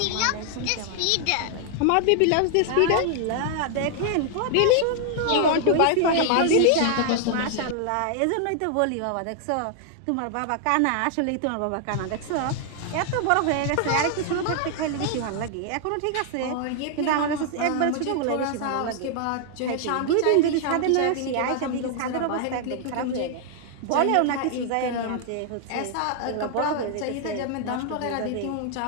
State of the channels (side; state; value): both; different; correlation 0.00